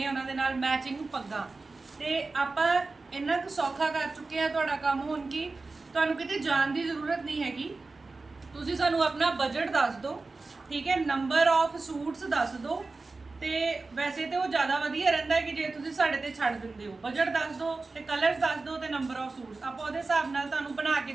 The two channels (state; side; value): quieter; left; 3.7 dB